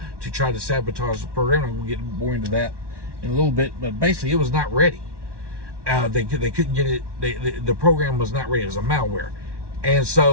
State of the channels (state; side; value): late; left; 1.1 ms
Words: to try to sabotage the program. I'm going to get more into that in a little bit, but basically it was not ready. They couldn't get it. The program was not ready. It was a malware. And